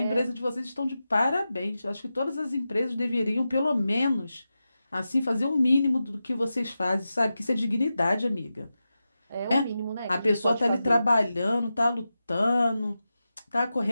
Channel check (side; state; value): both; inverted; correlation -0.92